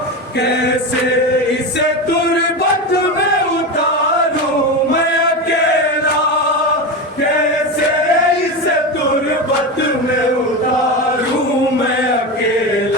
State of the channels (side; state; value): both; normal; correlation 0.20